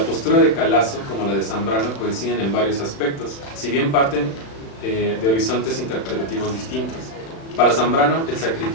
postura de Calasso como la de Zambrano coinciden en varios aspectos, si bien parten de horizontes interpretativos distintos. Para Zambrano, el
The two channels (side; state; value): right; late; 36 ms